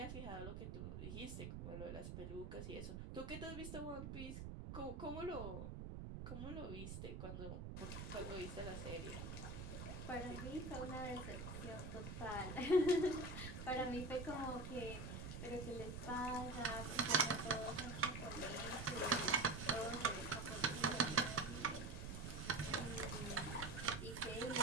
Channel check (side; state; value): right; noise; rumble, 6 dB below the sound